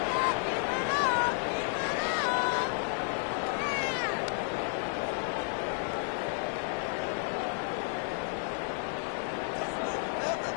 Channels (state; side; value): silent; right; 57 dB below the other